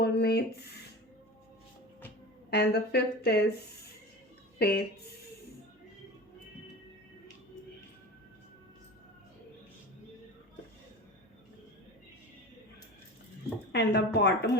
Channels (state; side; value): normal; both; correlation 0.32